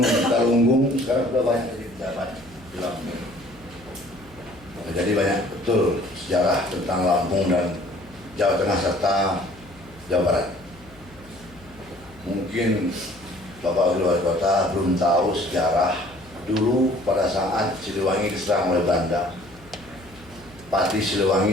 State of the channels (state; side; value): noise; left; hum, 24 dB below the sound